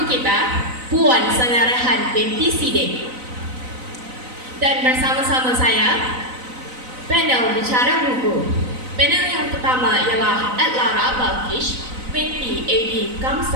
kita, Puan Sangarahan binti Sidik. Dan bersama-sama saya, panel bicara buku. Panel yang pertama ialah Adlara Balkish binti A.D.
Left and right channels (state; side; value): late; left; 4.0 ms